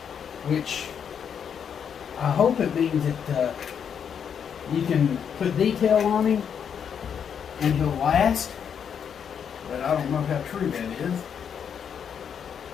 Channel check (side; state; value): right; quieter; 7.7 dB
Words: which I hope it means that you can put detail on him and he'll last. But I don't know how true that is.